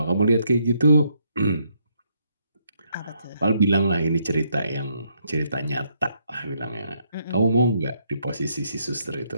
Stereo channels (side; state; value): both; inverted; correlation -0.74